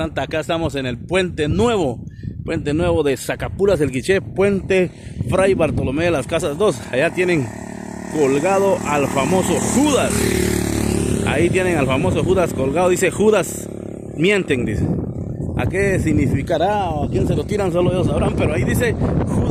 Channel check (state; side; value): identical; both; correlation 1.00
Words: Acá estamos en el Puente Nuevo de Zacapulas el Quiché, Puente Fray Bartolomé de las Casas 2. Allá tienen colgado al famoso Judas. Ahí tienen al famoso Judas colgado. Dice Judas mienten, dice. ¿A qué significará o a quién se lo tiran? Solo ellos sabrán, pero ahí dice